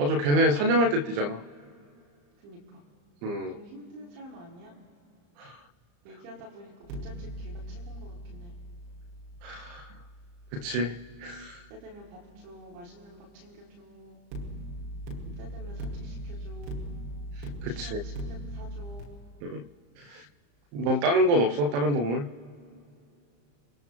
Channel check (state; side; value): late; left; 34 ms